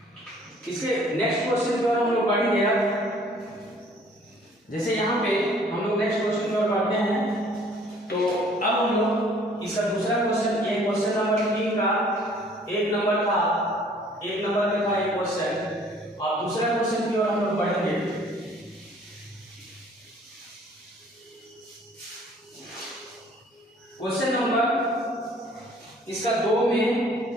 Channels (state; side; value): normal; both; correlation 0.56